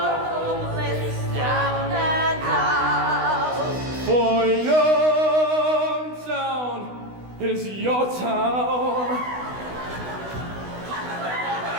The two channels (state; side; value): late; left; 16 ms